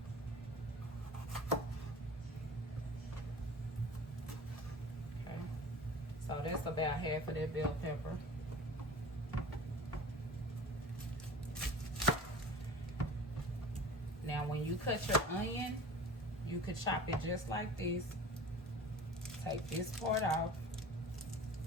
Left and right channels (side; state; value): both; normal; correlation 0.40